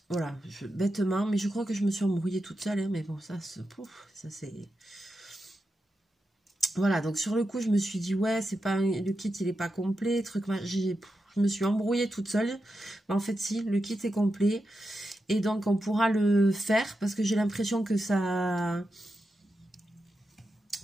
voilà, bêtement, mais je crois que je me suis embrouillée toute seule, hein, mais bon, ça c'est... Voilà, donc sur le coup, je me suis dit, ouais, c'est pas le kit, il est pas complet, truc, je me suis embrouillée toute seule. Mais en fait, si, le kit est complet, et donc on pourra le faire, parce que j'ai l'impression que ça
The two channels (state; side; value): normal; both; correlation 0.88